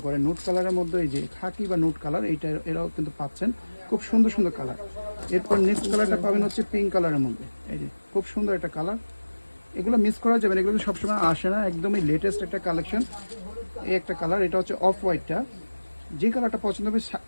করেন, নোট কালারের মধ্যে এই যে খাকি বা নোট কালার, এইটা এরাও কিন্তু পাচ্ছেন, খুব সুন্দর সুন্দর কালার। এরপর নেক্সট কালারটা পাবেন হচ্ছে পিঙ্ক কালারের মধ্যে, এই যে খুব সুন্দর একটা কালার। এগুলো মিস করা যাবে না, এগুলো কিন্তু সবসময় আসে না, একদমই লেটেস্ট একটা কালেকশন। এই একটা কালার, এটা হচ্ছে অফ হোয়াইটটা। যে কালারটা পছন্দ হবে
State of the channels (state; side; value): inverted; both; correlation -1.00